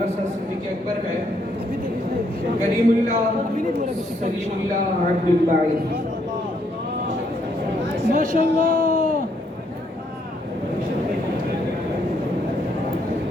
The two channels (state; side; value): normal; both; correlation 0.72